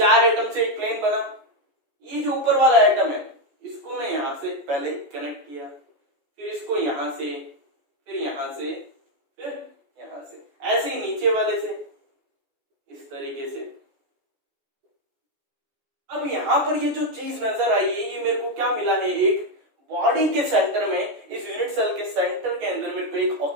एटम से एक प्लेन बना। ये जो ऊपर वाला एटम है इसको मैं यहाँ से पहले कनेक्ट किया, फिर इसको यहाँ से, फिर यहाँ से, फिर यहाँ से, ऐसे ही नीचे वाले से इस तरीके से। अब यहाँ पर ये जो चीज नजर आई है, ये मेरे को क्या मिला है, एक बॉडी के सेंटर में, इस यूनिट सेल के सेंटर के अंदर मेरे को एक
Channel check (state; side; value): late; left; 14 ms